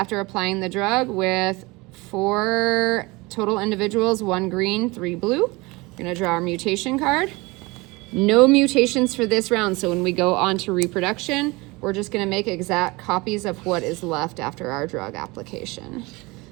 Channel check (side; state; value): left; quieter; 23.9 dB